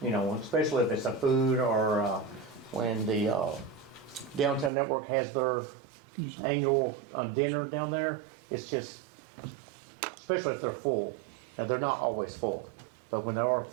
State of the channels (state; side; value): drops out; left; at 4.7 s